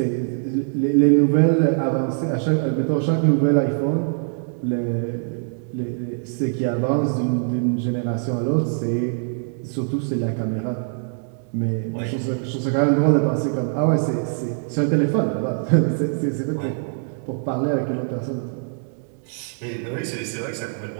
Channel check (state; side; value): silent; left; 64 dB below the other